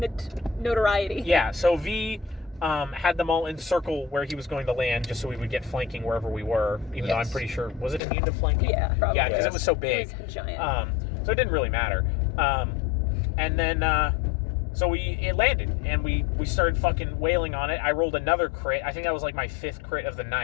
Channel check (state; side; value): drops out; right; at 8.0 s